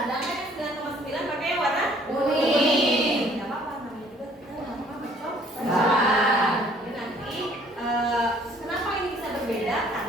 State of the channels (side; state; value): both; normal; correlation 0.58